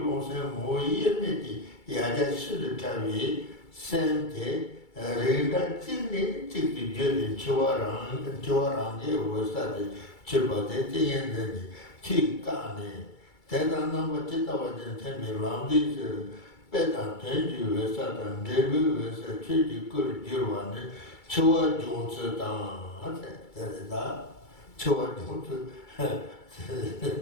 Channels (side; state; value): right; late; 2.3 ms